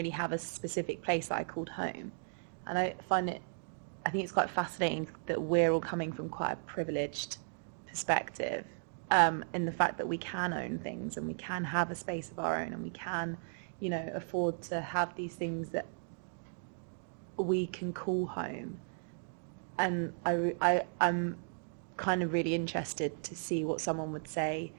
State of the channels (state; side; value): silent; left; digital silence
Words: have a specific place that I called home. And I think it's quite fascinating that we're all coming from quite a privileged perspective, in the fact that we can own things and we can have a space of our own and we can, afford to have these things that we can call home. And I'm kind of really interested to see what someone would say